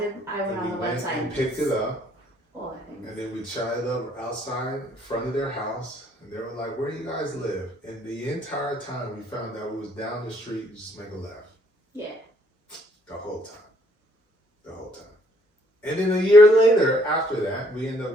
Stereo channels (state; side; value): normal; both; correlation 0.65